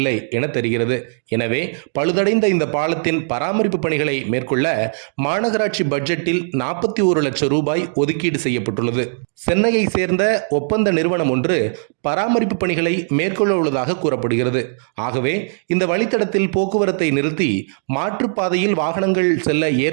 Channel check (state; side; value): silent; left; digital silence